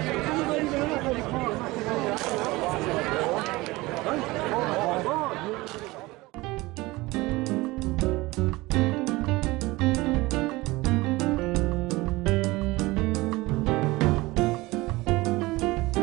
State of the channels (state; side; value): quieter; left; 21.0 dB